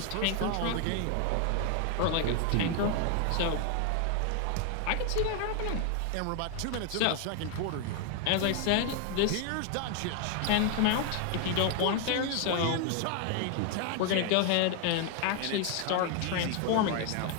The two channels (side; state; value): both; different; correlation 0.00